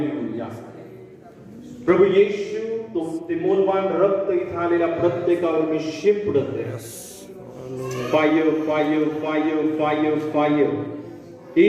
प्रभू येशू, तो ते मौल्यवान रक्त इथं आलेल्या प्रत्येकावर मी शिंपडत आहे. Fire fire fire fire fire.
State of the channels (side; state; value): both; identical; correlation 1.00